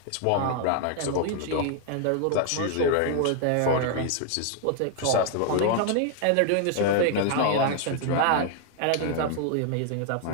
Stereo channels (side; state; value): both; different; correlation 0.00